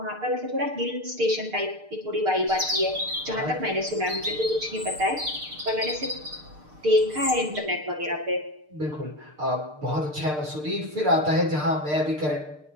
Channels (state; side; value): late; left; 6.6 ms